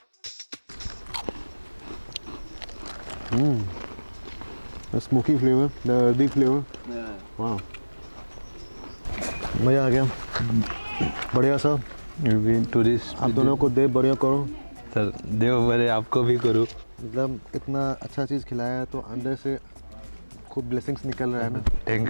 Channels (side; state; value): both; inverted; correlation -1.00